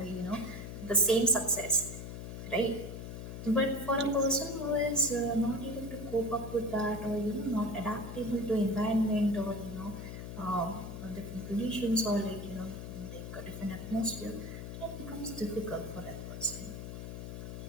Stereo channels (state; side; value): noise; left; hum, 8 dB below the sound